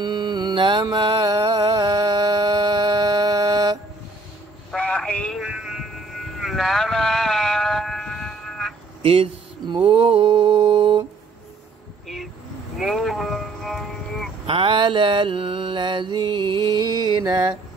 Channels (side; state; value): left; quieter; 3.5 dB